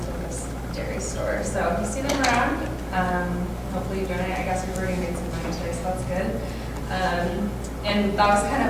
Campus Dairy Store. So if you see them around, hopefully you donate. I guess we've already made some money today, so that's good. And that was kind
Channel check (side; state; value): both; identical; correlation 1.00